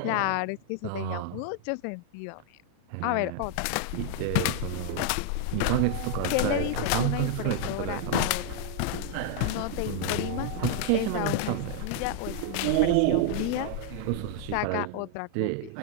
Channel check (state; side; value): different; both; correlation 0.00